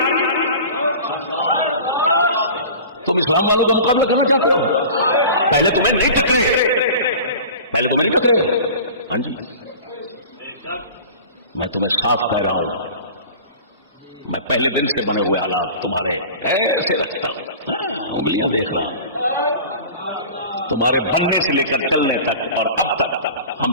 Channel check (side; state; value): both; inverted; correlation -0.39